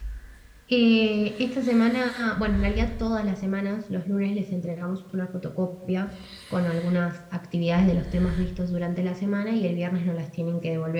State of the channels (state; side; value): identical; both; correlation 1.00